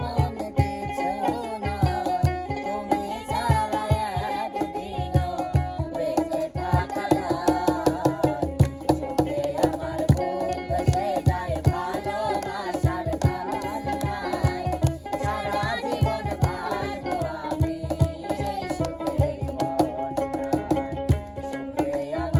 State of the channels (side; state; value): both; identical; correlation 1.00